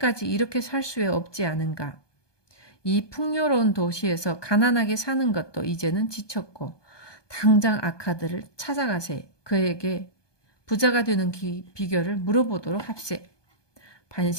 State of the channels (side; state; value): right; late; 1.2 ms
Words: 이렇게 살 수 없지 않은가? 이 풍요로운 도시에서 가난하게 사는 것도 이제는 지쳤고 당장 아카드를 찾아가세. 그에게 부자가 되는 비결을 물어보도록 합세.